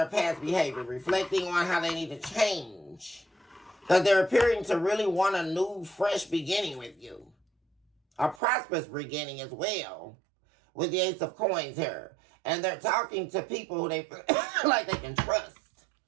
past behavior, reflecting on how they need to change. Because they're appearing to really want a new, fresh beginning with you. A prosperous beginning as well. With the Ace of Coins here. And they're talking to people who they feel like they can trust.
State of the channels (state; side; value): drops out; left; at 8.4 s